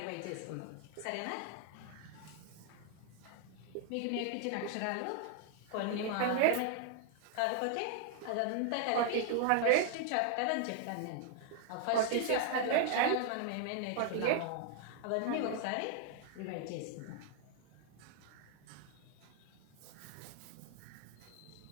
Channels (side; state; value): both; different; correlation 0.00